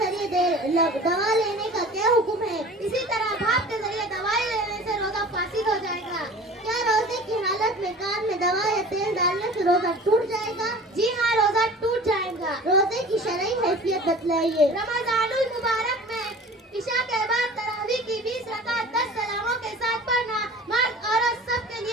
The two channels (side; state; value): both; normal; correlation 0.42